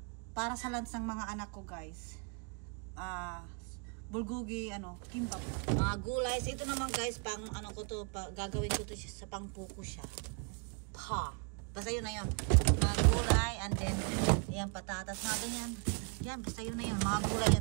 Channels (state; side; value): quieter; left; 35.9 dB